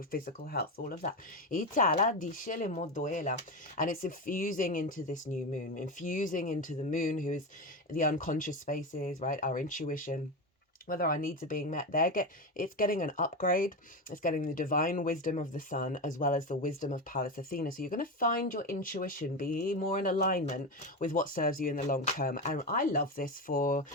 physical health, all of that. And it's infusing into this new moon, infusing into the moon, who is the unconscious spaces, right? Our intuition, whether our needs are being met. It's getting an upgrade. It's getting the divine wisdom of the sun as well as the wisdom of Pallas Athena. So you're going to find your intuition be more in alignment with what serves you in the long term. And I love this for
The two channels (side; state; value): both; normal; correlation 0.17